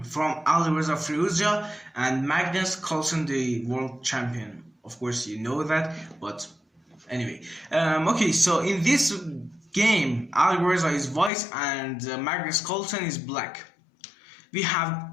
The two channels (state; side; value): drops out; right; at 11.3 s